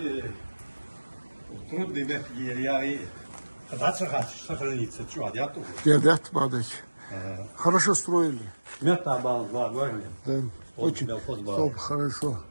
трудные ветки, я и сохраниться. Чего, я тут? Да, падать. Хорошо строили. Мета бал, два, говорили. Да, очень Столб хорошо.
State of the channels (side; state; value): both; inverted; correlation -1.00